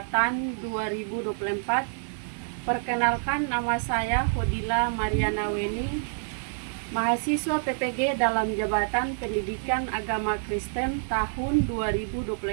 2024. Perkenalkan, nama saya Hodila Mariana Weni, mahasiswa PPG dalam jabatan Pendidikan Agama Kristen tahun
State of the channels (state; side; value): silent; left; digital silence